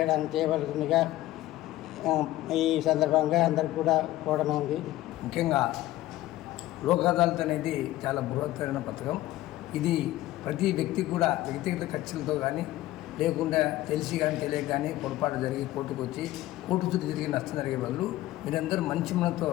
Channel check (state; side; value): quieter; right; 15.9 dB